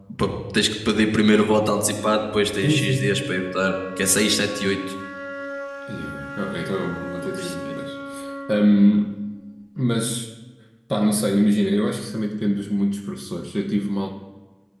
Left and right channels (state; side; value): identical; both; correlation 1.00